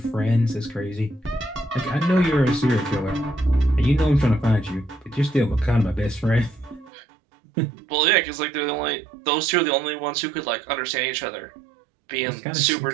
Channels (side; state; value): left; drops out; at 6.9 s